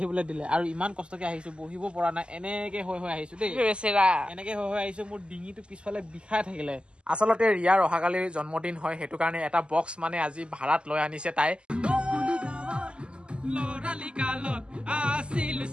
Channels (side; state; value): left; late; 0.052 ms